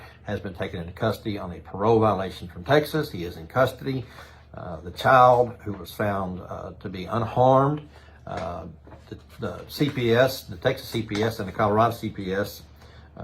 has been taken into custody on a parole violation from Texas. He is in custody. The child, who was found to be unharmed, the CPS, the Texas CPS and the Colorado CPS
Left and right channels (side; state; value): both; identical; correlation 1.00